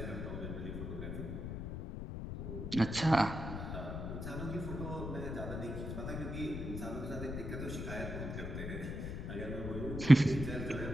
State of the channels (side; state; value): left; noise; rumble, 5 dB below the sound